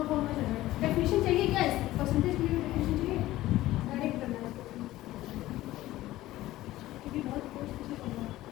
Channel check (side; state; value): right; quieter; 16.0 dB